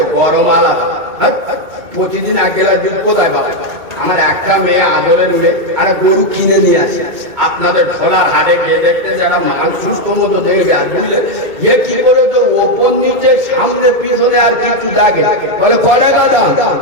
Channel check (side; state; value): left; late; 2.2 ms